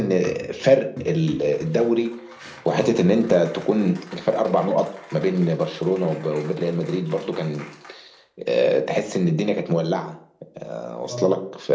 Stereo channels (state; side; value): identical; both; correlation 1.00